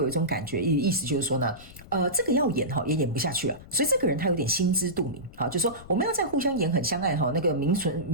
一种感觉，意思就是说呢，这个要演也演不下去了，所以这个人他有点心知肚明就是说我们要再互相演很相爱那个名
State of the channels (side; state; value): left; noise; rumble, 19 dB below the sound